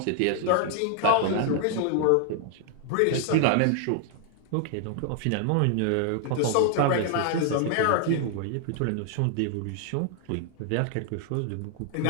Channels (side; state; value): both; different; correlation 0.00